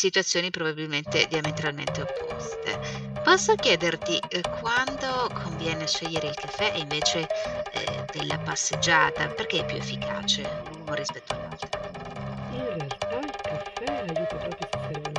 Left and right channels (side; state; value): both; identical; correlation 1.00